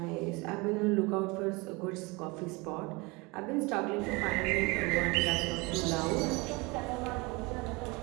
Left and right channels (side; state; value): left; quieter; 25.9 dB